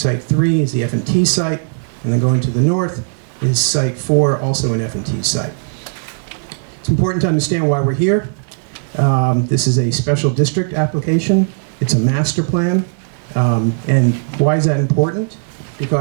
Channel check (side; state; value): left; silent; digital silence